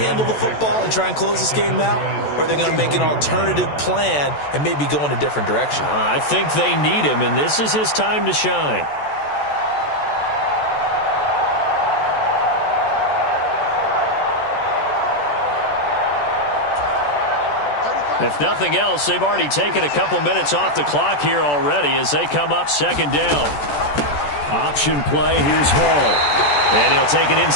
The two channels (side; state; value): right; late; 14 ms